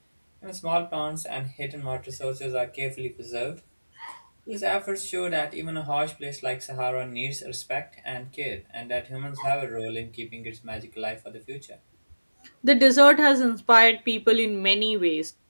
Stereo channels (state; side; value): inverted; both; correlation -1.00